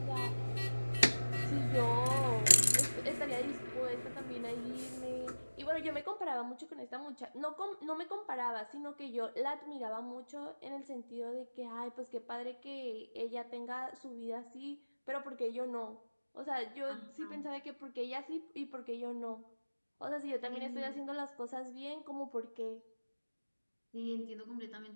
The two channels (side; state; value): both; inverted; correlation -1.00